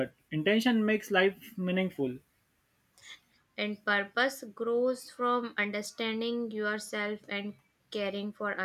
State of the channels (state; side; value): identical; both; correlation 1.00